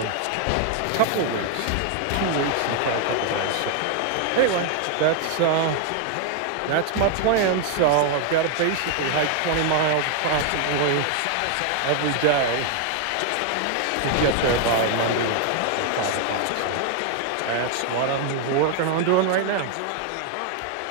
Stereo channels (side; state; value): both; different; correlation 0.00